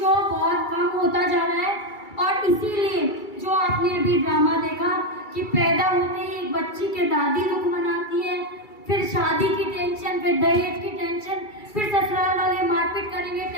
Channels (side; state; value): right; late; 2.3 ms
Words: बहुत कम होता जा रहा है। और इसीलिए जो आपने अभी ड्रामा देखा कि पैदा होते ही एक बच्ची के दादी दुख मनाती है, फिर शादी की टेंशन, फिर दहेज की टेंशन, फिर ससुराल वाले मारपीट करेंगे